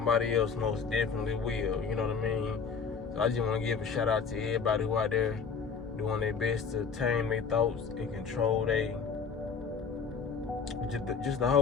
else most definitely will, you know what I mean? So I just want to give a shout out to everybody who out there doing their best to tame their thoughts and control just the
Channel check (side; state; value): right; quieter; 5.7 dB